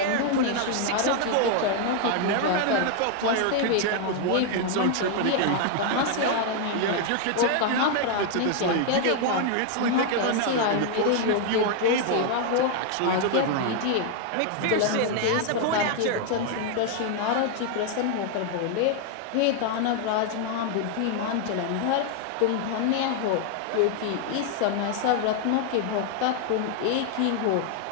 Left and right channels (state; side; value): different; both; correlation 0.00